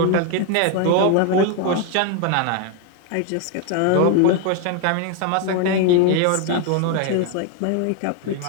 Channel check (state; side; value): different; both; correlation 0.01